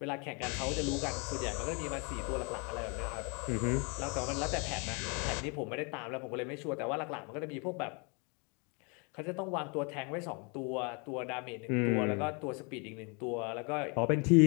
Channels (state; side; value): quieter; right; 33.2 dB